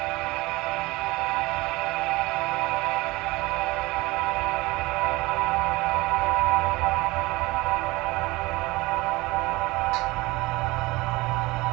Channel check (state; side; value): quieter; left; 21.5 dB